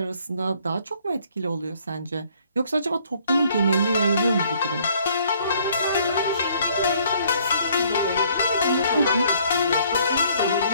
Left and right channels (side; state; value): both; inverted; correlation -0.62